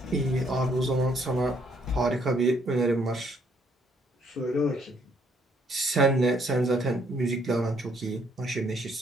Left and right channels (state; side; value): normal; both; correlation 0.68